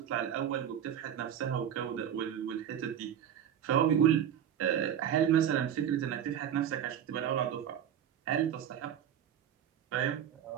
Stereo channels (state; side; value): quieter; left; 9.6 dB